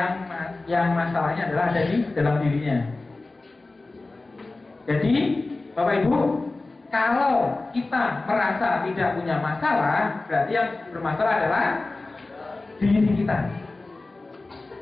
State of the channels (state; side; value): quieter; right; 3.3 dB